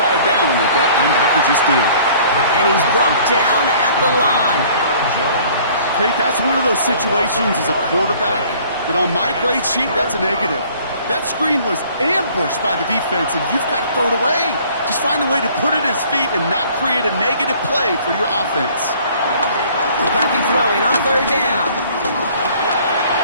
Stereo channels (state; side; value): inverted; both; correlation -0.54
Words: down like that linebacker just did. And he's brought down at the line. Kate, that's one of those situations as a quarterback that on my grade sheet, that's a negative. That screen was ambushed by the defense, and you've got to throw it away. Just find a way to put it at his feet and not create a negative play for your offense. McCarthy throwing on third down.